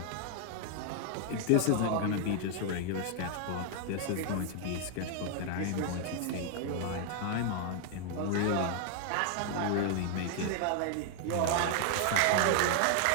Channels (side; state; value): both; different; correlation 0.00